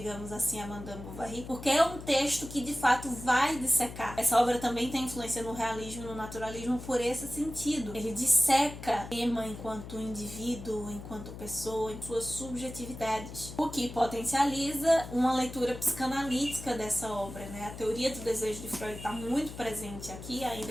assim, a Madame Bovary, porque é um texto que de fato vai dissecar. Essa obra também tem influência no realismo, no naturalismo, por esse sentido. Ele disseca Emma enquanto indivíduo, enquanto pessoa, em suas subjetividades, o que potencializa uma leitura psicanalítica dessa obra, né? A teoria do desejo de Freud está muito presente aqui,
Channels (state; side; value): noise; left; hum, 12 dB below the sound